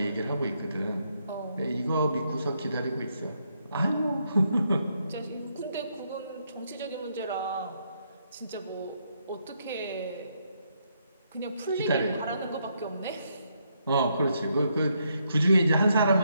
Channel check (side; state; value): both; inverted; correlation -0.76